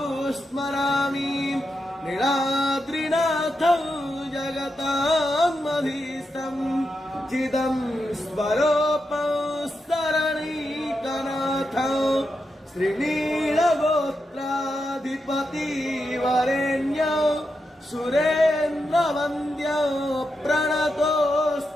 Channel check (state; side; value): normal; both; correlation 0.86